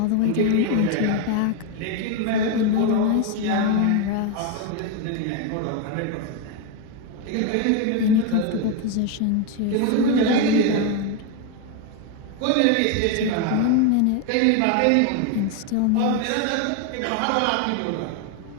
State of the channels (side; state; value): both; different; correlation 0.02